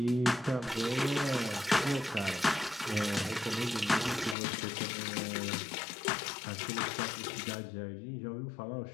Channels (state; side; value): drops out; right; at 4.4 s